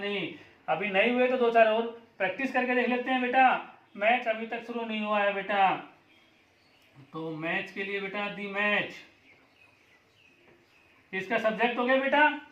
अभी नहीं हुए तो दो चार और प्रैक्टिस करके देख लेते हैं बेटा। मैच अभी तक शुरू नहीं हुआ है बेटा, तो मैच के लिए बेटा दी मैच, इसका सब्जेक्ट हो गया बेटा,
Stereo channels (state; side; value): identical; both; correlation 1.00